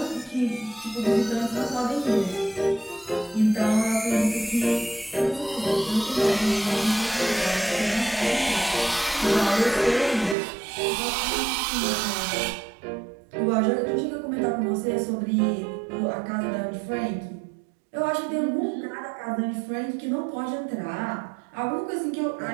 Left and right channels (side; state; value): left; drops out; at 10.4 s